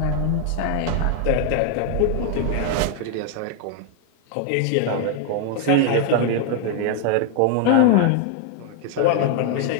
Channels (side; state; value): both; different; correlation 0.00